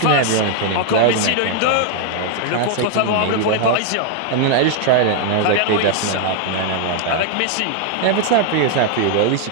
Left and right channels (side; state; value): both; different; correlation 0.00